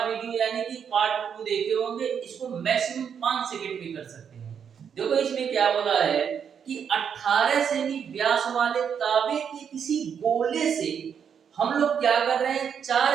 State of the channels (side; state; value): left; quieter; 7.5 dB